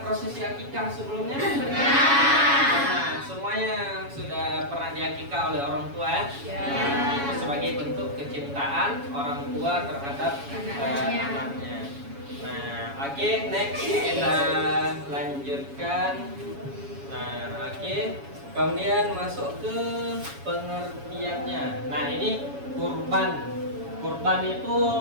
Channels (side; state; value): left; late; 7.2 ms